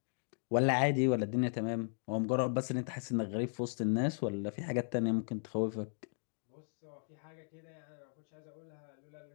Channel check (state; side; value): silent; right; digital silence